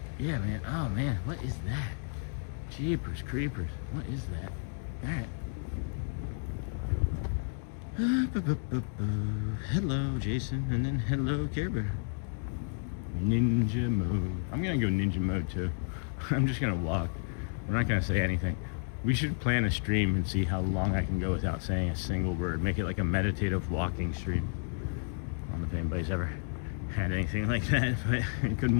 yeah, man. Oh man, what is that? Jeepers creepers, what is that? All right. Hello, Jason, and then hello, Care Bear. Ninja mode. I'm gonna go ninja mode too. I'm just gonna walk. We're not gonna say anything. We should plan a stream and see how long I can go without saying a single word. Make it like a meditative walking stream. I don't know if anybody's ever had anything like that, but good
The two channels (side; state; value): right; silent; digital silence